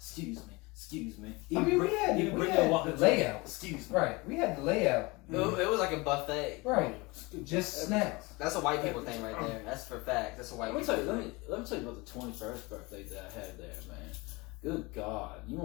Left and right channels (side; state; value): right; quieter; 24.7 dB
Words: I mean, we had the layout. Excuse me. Right, we had the layout. It was like a buffet. Right, just snacks. That's a white people thing right there. That's for facts. That's a white Let me people tell you. thing. Let me tell you about the 21st birthday that I had there, man. Good God, you